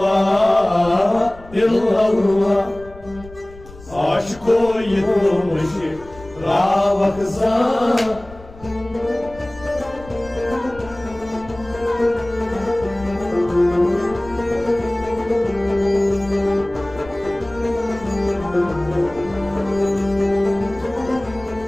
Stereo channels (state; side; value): noise; left; rumble, 19 dB below the sound